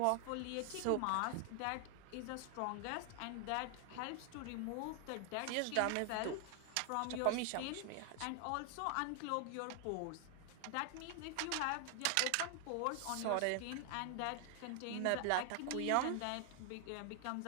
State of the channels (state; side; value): different; both; correlation 0.00